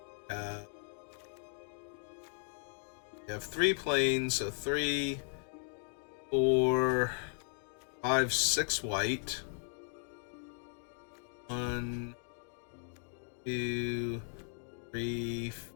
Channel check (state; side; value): silent; right; 53 dB below the other